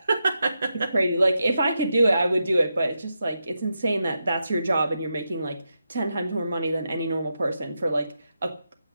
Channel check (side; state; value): both; inverted; correlation -0.86